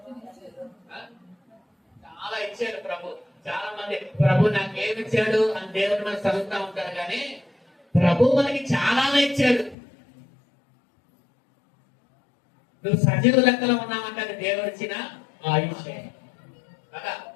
చాలా ఇచ్చాడు ప్రభు. చాలా మంది ప్రభు నాకు ఏమి ఇచ్చాడు అని దేవుడు మనకు చదువుతా ఉంటారు, కానీ ప్రభు మనకి చాలానే ఇచ్చాడు. నువ్వు సజీవ లెక్కలో ఉన్నావంటే అది దేవుడు ఇచ్చిన ఆయుష్ కదా.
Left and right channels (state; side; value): drops out; right; at 9.8 s